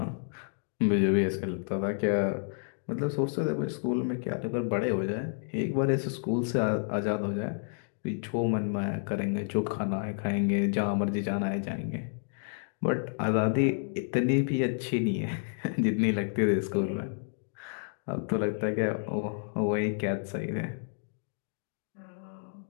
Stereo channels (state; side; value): silent; right; digital silence